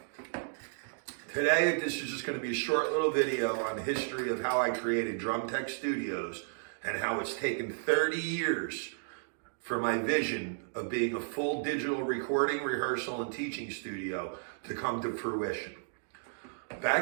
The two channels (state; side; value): silent; left; digital silence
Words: Today, this is just going to be a short little video on the history of how I created Drum Tech Studios and how it's taken 30 years for my vision of being a full digital recording, rehearsal, and teaching studio to come to fruition.